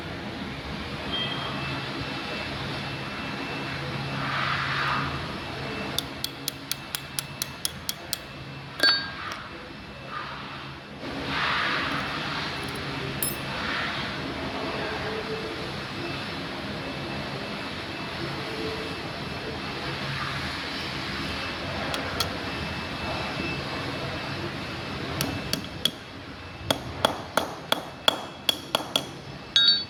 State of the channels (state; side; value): identical; both; correlation 1.00